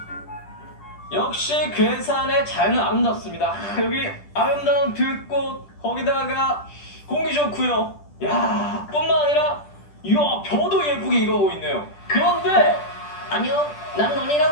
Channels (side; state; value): right; late; 10 ms